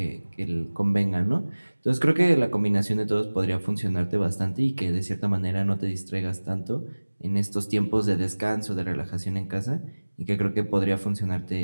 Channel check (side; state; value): both; inverted; correlation -1.00